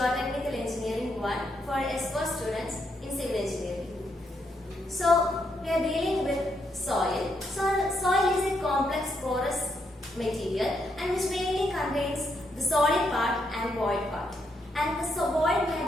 Engineering 1 for S4 students in civil engineering. So, we are dealing with soil. So, soil is a complex porous material and which mainly contains the solid part and void part. And the void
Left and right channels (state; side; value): normal; both; correlation 0.78